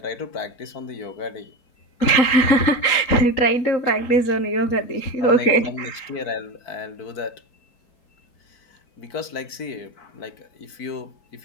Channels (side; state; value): right; late; 3.9 ms